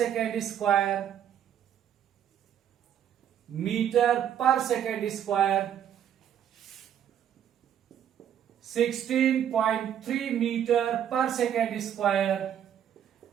square, meter per second square, 16.3 meter per second square,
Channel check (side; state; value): left; quieter; 9.6 dB